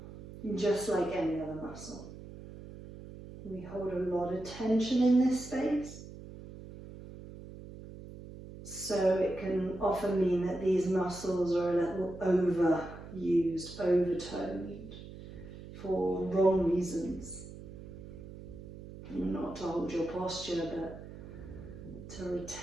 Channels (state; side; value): noise; right; hum, 14 dB below the sound